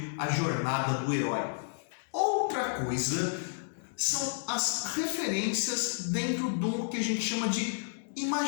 a Jornada do Herói. Outra coisa são as referências dentro do que a gente chama de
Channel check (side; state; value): right; silent; digital silence